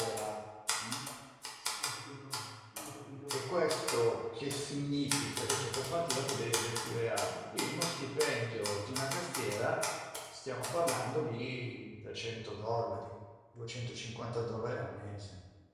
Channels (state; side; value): identical; both; correlation 1.00